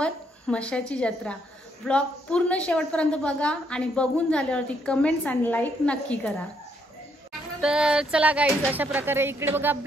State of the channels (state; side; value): normal; both; correlation 0.72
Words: म्हसाची जत्रा। व्लॉग पूर्ण शेवटपर्यंत बघा आणि बघून झाल्यावरती कमेंट्स आणि लाईक नक्की करा। तर चला गाईज, अशा प्रकारे इकडे बघा